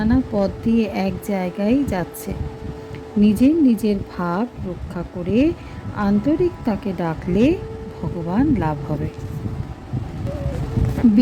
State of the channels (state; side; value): identical; both; correlation 1.00